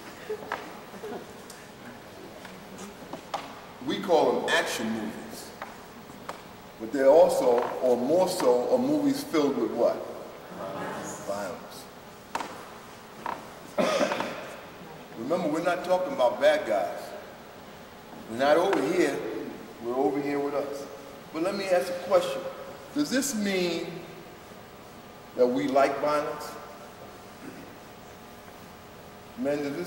We call them action movies. But they're also, or more so, are movies filled with what? Violence. Remember, we're not talking about bad guys. We're not over here, we're over here with us. But let me ask a question. Does this mean that we like violence? Men, does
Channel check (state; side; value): identical; both; correlation 1.00